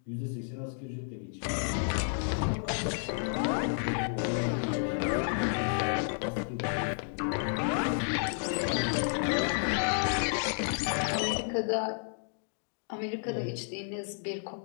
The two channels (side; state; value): right; silent; digital silence